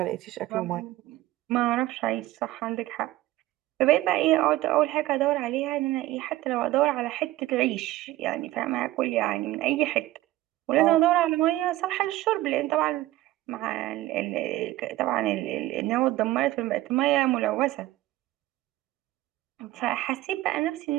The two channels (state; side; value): quieter; left; 16.4 dB